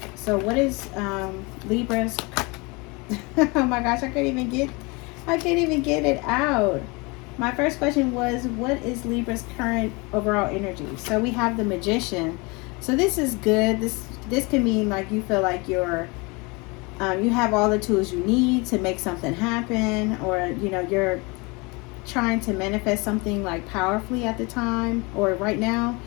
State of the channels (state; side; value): quieter; right; 27.4 dB